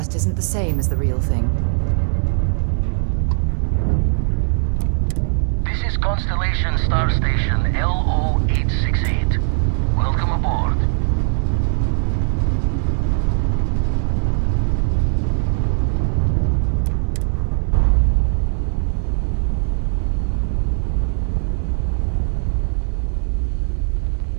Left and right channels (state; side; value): silent; left; 66 dB below the other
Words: isn't the same as the real thing. This is Constellation Star Station LO-868. Welcome aboard.